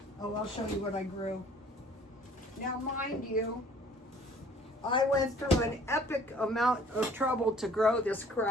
Oh, I'll show you what I grew. Now, mind you, I went through an epic amount of trouble to grow this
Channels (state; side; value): normal; both; correlation 0.54